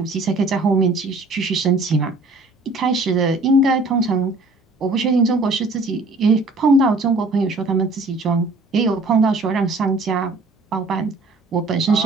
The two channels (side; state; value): left; quieter; 3.1 dB